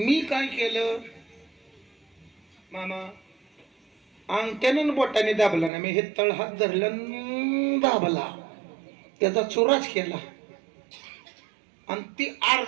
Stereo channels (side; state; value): left; drops out; at 5.7 s